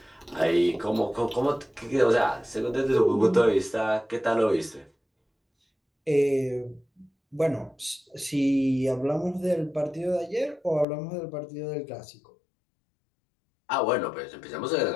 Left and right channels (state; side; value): drops out; right; at 10.9 s